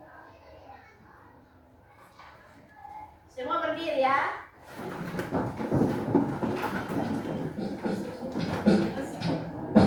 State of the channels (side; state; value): both; identical; correlation 1.00